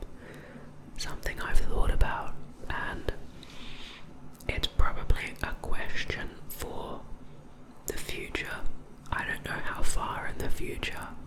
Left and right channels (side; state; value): both; identical; correlation 1.00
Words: Something I've thought about, and it's probably a question for the future. I don't know how far in the future,